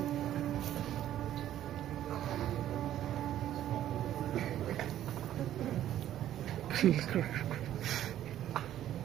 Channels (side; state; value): left; quieter; 12.0 dB